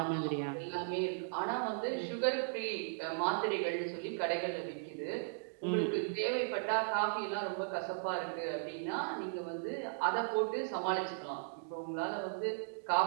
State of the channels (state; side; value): silent; left; digital silence